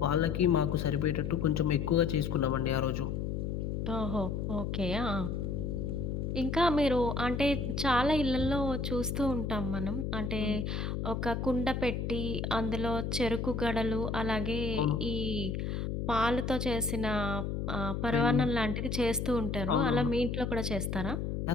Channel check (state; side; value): noise; left; hum, 2 dB below the sound